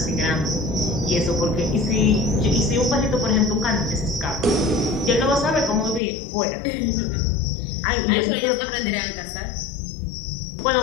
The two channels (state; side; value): drops out; right; at 6.0 s